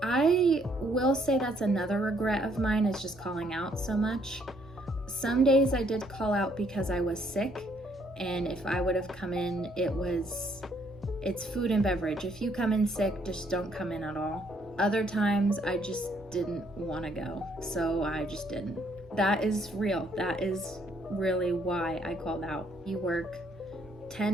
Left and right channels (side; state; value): both; normal; correlation 0.68